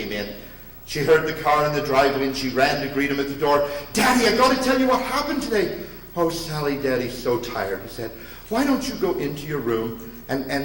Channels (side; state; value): both; identical; correlation 1.00